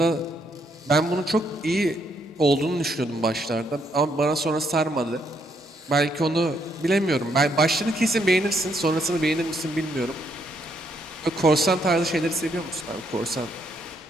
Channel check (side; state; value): both; normal; correlation 0.74